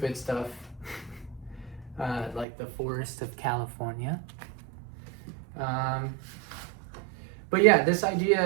stuff like the forest of California. But yeah, this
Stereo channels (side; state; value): left; drops out; at 2.5 s